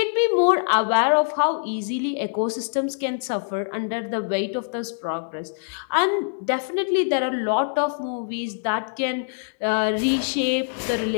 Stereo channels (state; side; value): silent; right; digital silence